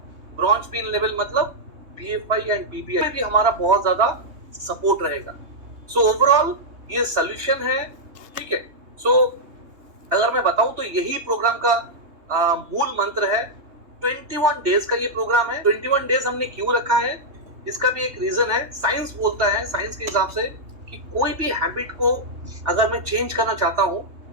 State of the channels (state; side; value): late; left; 3.2 ms